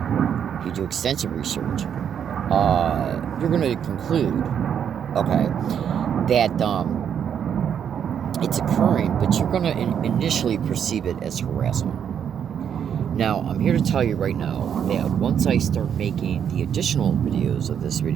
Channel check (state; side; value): quieter; left; 8.4 dB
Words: you do extensive research, you're going to conclude, okay, that it's occurring, but you're going to initially perceive it as harassment. Now, I'm here to tell you right now that once I start making the additional videos of this